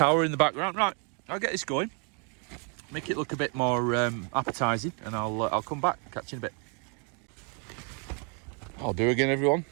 in the background. Right, I'll get this going, make it look a bit more appetizing, and I'll come back, catch you in a bit. I'll do again, everyone.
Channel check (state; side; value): quieter; left; 37.9 dB